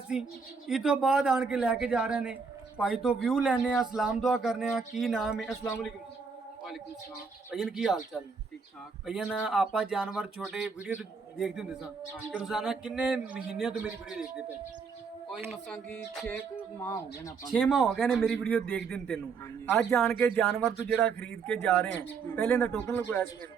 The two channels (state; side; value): quieter; left; 5.3 dB